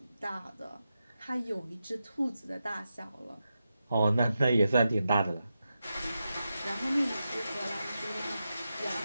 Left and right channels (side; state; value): both; inverted; correlation -0.89